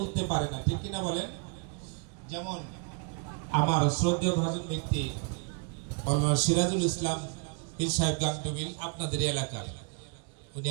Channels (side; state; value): left; quieter; 37.9 dB